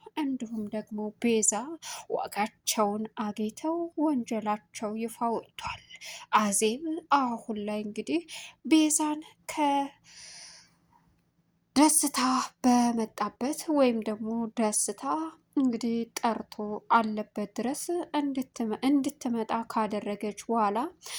እንዲሁም ደግሞ ቤዛ ዋጋቸውን አግኝተው ወንጀላቸው ይፋ ወጥቷል። አዜብ አሁን ላይ እንግዲህ ቤዛን ከደስታ በመጣበት ወይም ደግሞ ደስታ እንግዲህ ጠርቶ አለበት ድረስ እንድትመጣ ካደረገች በኋላ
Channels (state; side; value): identical; both; correlation 1.00